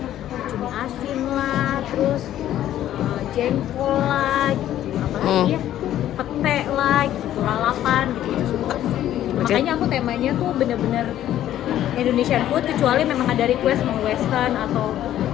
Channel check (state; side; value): quieter; right; 12.2 dB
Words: cumi asin lah, terus jengkol lah gitu, apalagi ya, pete lah gitu, lalapan gitu, itu suka sih. Makanya aku temanya tuh bener-bener Indonesian food, kecuali memang ada request mau western atau